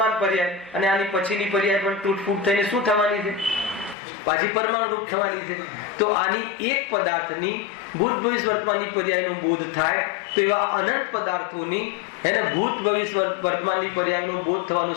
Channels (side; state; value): right; drops out; at 4.0 s